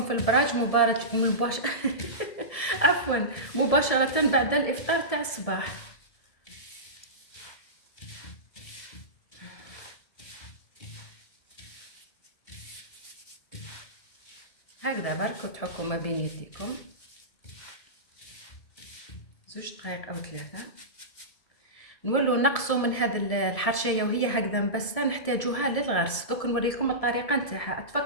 في البراج عفوا مباشرة بعد الافطار تاع الصباح. هكذا برك وتحكوا ما بين يديكم 2 دقائق او 3. نولوا نقصوا من هذا الحرشيه وهي هكذا مبسه، نحتاجوها للغرس. دوك نوريكم الطريقه نتاعها،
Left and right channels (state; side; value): late; right; 1.7 ms